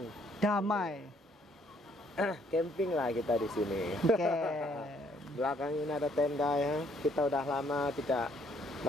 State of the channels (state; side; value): normal; both; correlation 0.66